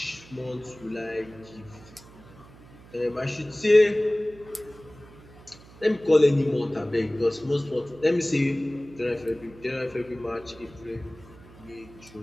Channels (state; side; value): noise; right; hum, 21 dB below the sound